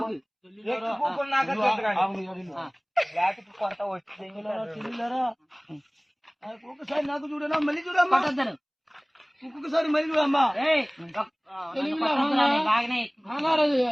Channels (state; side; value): identical; both; correlation 1.00